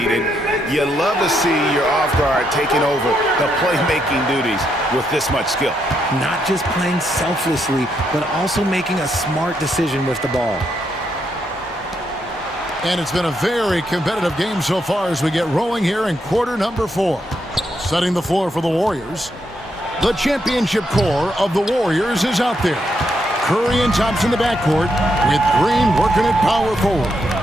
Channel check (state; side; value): normal; both; correlation 0.79